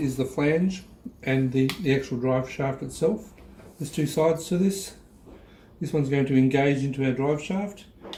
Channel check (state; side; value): identical; both; correlation 1.00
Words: the flange and the actual drive shaft itself. There's two sides to this. This one's going to engage into our drive shaft.